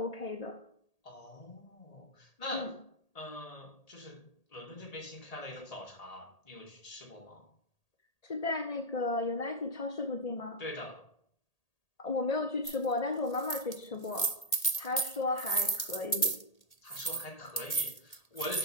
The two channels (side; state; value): right; late; 1.8 ms